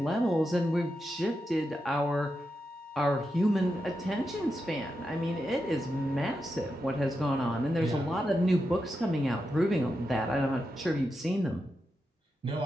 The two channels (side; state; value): both; normal; correlation 0.87